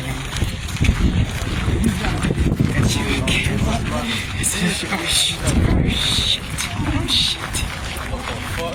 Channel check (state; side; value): identical; both; correlation 1.00